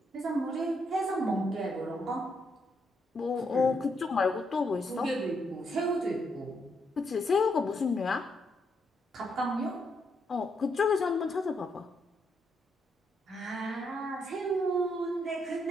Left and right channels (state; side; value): normal; both; correlation 0.77